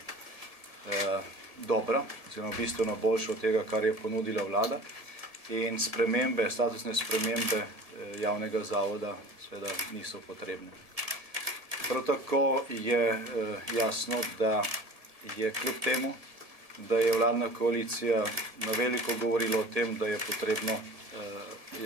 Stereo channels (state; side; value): late; left; 1.7 ms